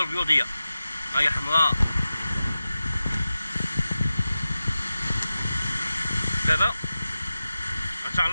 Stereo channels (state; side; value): inverted; both; correlation -0.94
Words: ها هي حمراء. دابا ان شاء